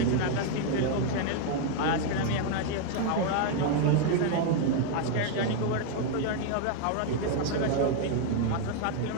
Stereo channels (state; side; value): different; both; correlation 0.00